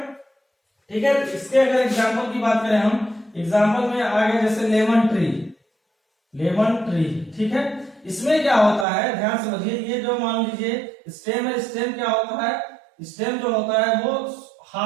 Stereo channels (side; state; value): left; drops out; at 8.8 s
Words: ठीक है। इसके अगर एग्जांपल की बात करें हम, एग्जांपल में आगे जैसे लेमन ट्री, ठीक है। इसमें क्या होता है, ध्यान समझिए, ये जो मान लीजिए स्टेम है, स्टेम क्या होता है? स्टेम जो होता है वो